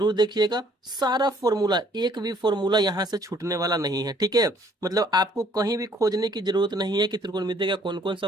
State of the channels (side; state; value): both; normal; correlation 0.61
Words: देखिएगा। सारा फॉर्मूला, एक भी फॉर्मूला यहाँ से छूटने वाला नहीं है, ठीक है। मतलब आपको कहीं भी खोजने की जरूरत नहीं है कि त्रिकोणमिति का कौन कौन सा